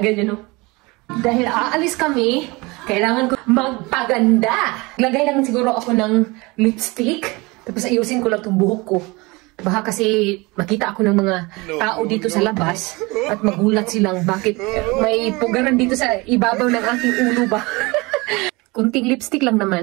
yan, no? Dahil aalis kami, kailangan ko magpaganda. Lagay lang siguro ako ng lipstick. Tapos ayusin ko lang itong buhok ko. Baka kasi makita ako ng mga tao dito sa labas at magulat silang bakit may pugaran dito sa ibabaw ng aking ulo ba. Kunting lipstick lang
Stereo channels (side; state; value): left; quieter; 24.6 dB